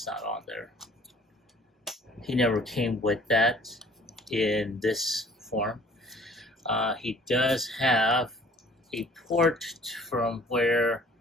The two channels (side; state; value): both; normal; correlation 0.53